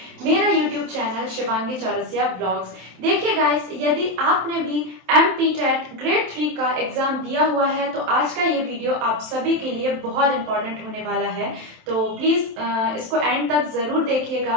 मेरा YouTube channel Shivangi Chaurasia blogs. देखिए गाइस, यदि आपने भी MPTET ग्रेड 3 का एग्जाम दिया हुआ है तो आज का ये वीडियो आप सभी के लिए बहुत इंपॉर्टेंट होने वाला है, तो प्लीज़ इसको एंड तक ज़रूर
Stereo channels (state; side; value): late; left; 27 ms